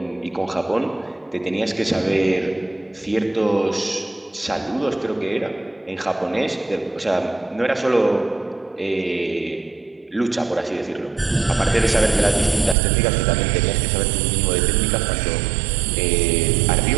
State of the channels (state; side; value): drops out; left; at 12.8 s